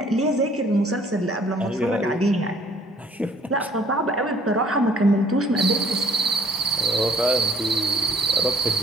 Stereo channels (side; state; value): both; normal; correlation 0.58